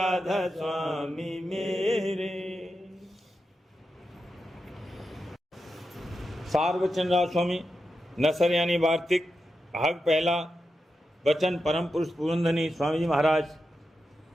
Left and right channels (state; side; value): normal; both; correlation 0.89